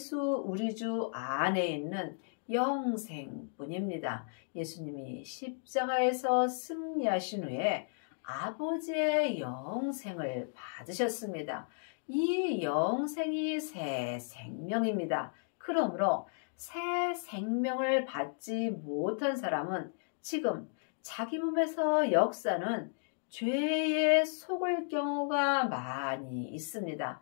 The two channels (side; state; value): right; silent; digital silence